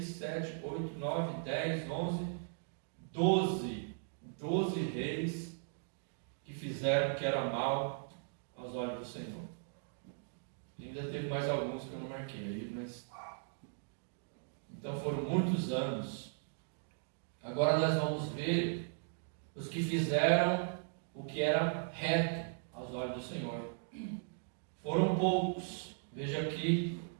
7, 8, 9, 10, 11, 12 reis que fizeram o que era mal aos olhos do Senhor. E ainda teve mais alguns que eu não marquei aí, mas... Então foram muitos anos. Agora nós vamos ver os que fizeram o que era reto aos olhos do Senhor. Foram poucos. Veja aqui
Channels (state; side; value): silent; left; digital silence